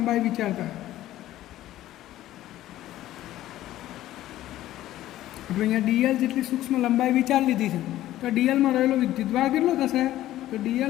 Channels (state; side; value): quieter; right; 14.2 dB